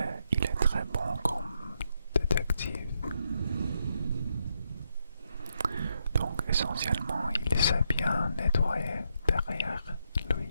il est très bon comme détective. Donc essentiellement, il sait bien nettoyer derrière lui.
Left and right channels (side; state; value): both; inverted; correlation -0.79